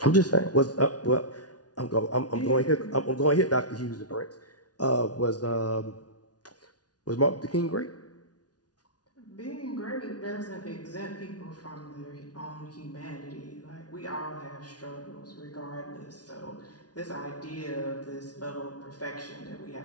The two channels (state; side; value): late; right; 0.69 ms